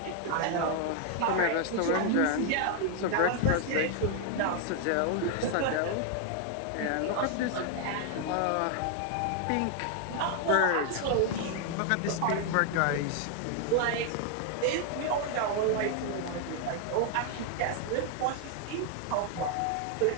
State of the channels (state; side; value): different; both; correlation 0.00